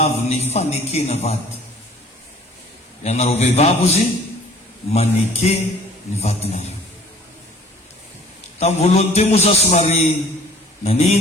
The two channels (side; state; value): both; normal; correlation 0.52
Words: ny fanekena vady. Ianareo vehivavy izy maneke ny vadinareo. Tamin'ny voalohany teo moa za somary